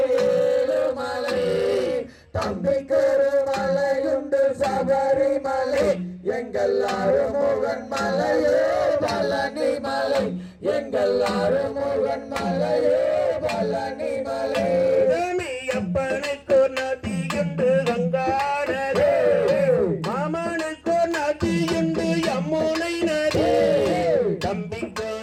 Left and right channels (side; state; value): both; identical; correlation 1.00